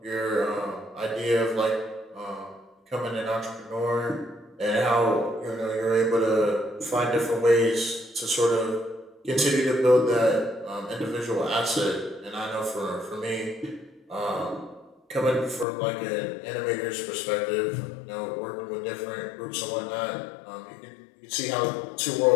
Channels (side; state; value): right; drops out; at 15.7 s